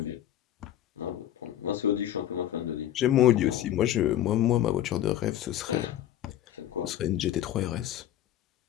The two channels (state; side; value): quieter; right; 12.0 dB